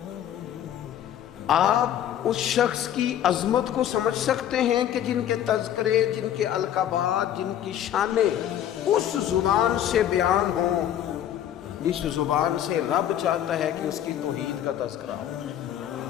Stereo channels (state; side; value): quieter; right; 10.8 dB